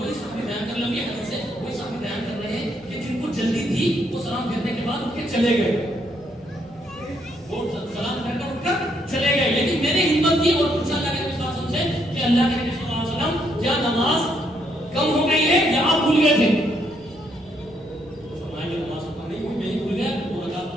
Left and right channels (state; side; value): noise; right; rumble, 27 dB below the sound